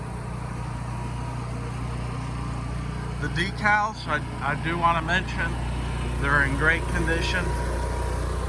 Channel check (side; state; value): both; identical; correlation 1.00